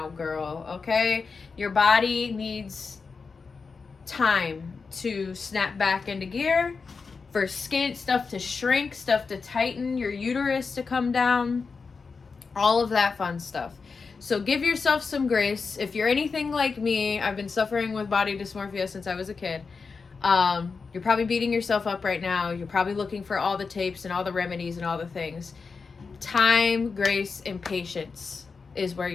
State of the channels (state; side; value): quieter; right; 4.9 dB